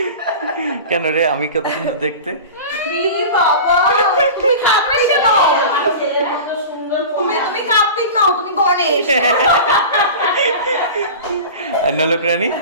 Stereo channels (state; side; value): inverted; both; correlation -0.33